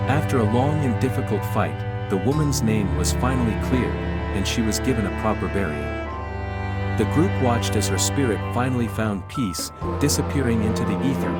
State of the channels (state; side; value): identical; both; correlation 1.00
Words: After a long and difficult fight, the woman's name was finally cleared, and she was given a proper burial. The group watched as her spirit finally found peace, disappearing into the ether